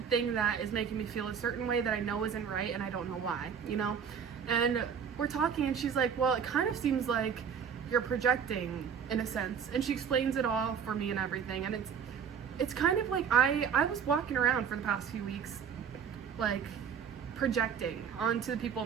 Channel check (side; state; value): left; quieter; 7.3 dB